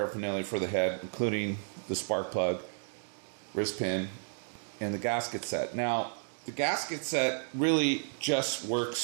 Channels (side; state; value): left; silent; digital silence